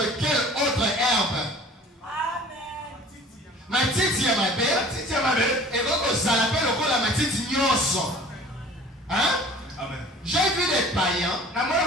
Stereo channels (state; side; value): normal; both; correlation 0.46